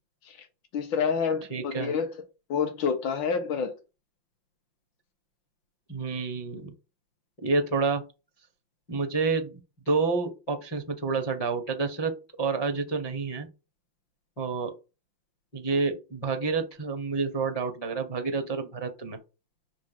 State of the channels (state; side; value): late; right; 5.8 ms